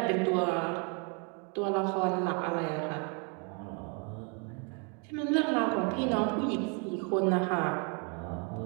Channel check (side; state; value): left; quieter; 35.7 dB